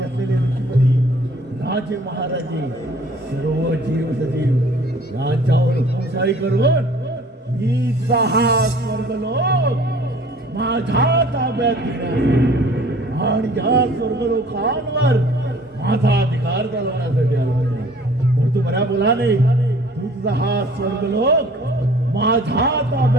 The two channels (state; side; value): normal; both; correlation 0.52